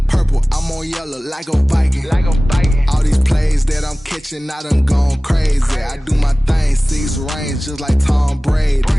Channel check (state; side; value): normal; both; correlation 0.98